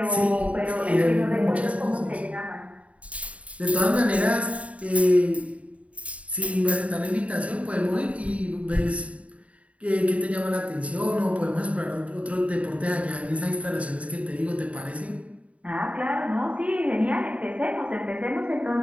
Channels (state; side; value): late; left; 0.066 ms